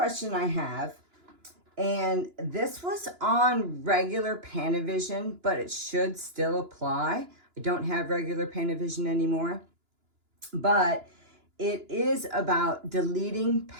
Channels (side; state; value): left; late; 2.9 ms